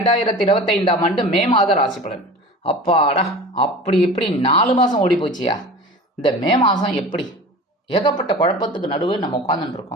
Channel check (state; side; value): normal; both; correlation 0.36